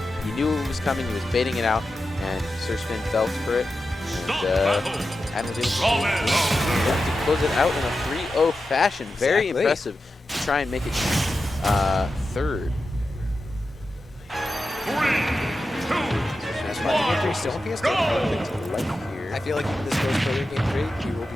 knew it was coming. He was baiting it out, and SirSfinn fell for it. And Adam was able to close it out in a 3-0 fashion. Very Exactly. impressive to try and make it third. That's why Game 3 still on PS2. I feel like if this goes further in Game 3, we will be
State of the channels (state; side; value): normal; both; correlation 0.91